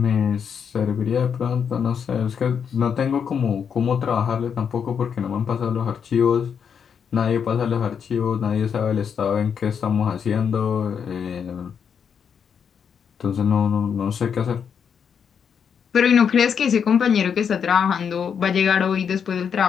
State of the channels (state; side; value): quieter; right; 7.2 dB